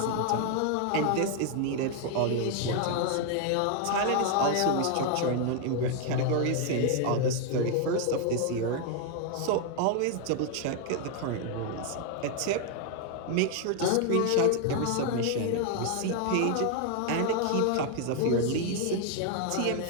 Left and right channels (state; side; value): different; both; correlation 0.00